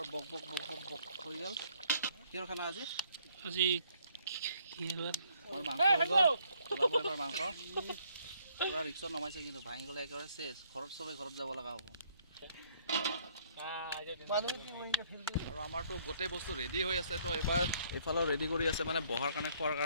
বক বক বক বক হৈ গ'ল। কিহৰ খানা আজি? আমাৰ মাংস হৈ গ'ল। ওলাব এবাৰ মাংস। পূৰা ৰিক্সত নমাইছে, কিন্তু ভাঙি গ'লে একেবাৰে চেচ। ঘৰত চবেই ঘৰত যাব লগা হ'ব। আৰু আমাৰতো গোটেই বস্তু ৰেডি হৈ আছে। তো এবাৰ এইফালেও ৰেডি কৰি আছে, মানে বহাৰ কাৰণে, খোৱাৰ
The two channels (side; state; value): both; inverted; correlation -0.65